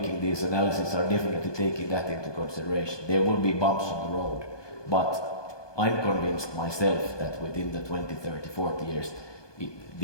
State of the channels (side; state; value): right; late; 1.2 ms